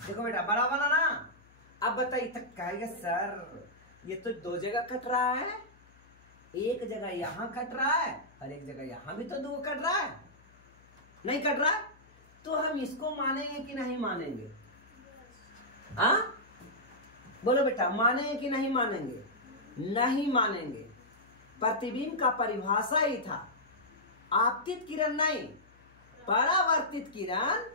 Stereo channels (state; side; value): noise; left; hum, 28 dB below the sound